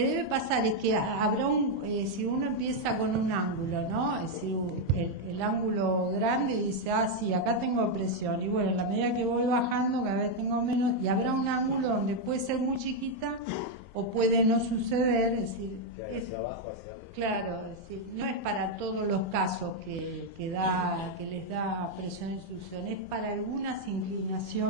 debe pasar es que habrá si uno empieza con un ángulo, ¿no? Es decir, el ángulo grande y dice, sí, acá tengo presión. Y bueno, a la medida que voy bajando, cada vez tengo menos. Y habrá un ángulo donde puede ser muy chiquita o puede no suceder. Es decir, hacia abajo, hacia arriba. Claro, es decir, no es para todos los casos que les da presión en succión, es para algunas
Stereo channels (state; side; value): late; left; 3.6 ms